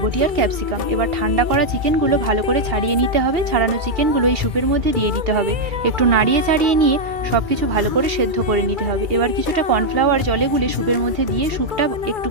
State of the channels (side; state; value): left; late; 2.3 ms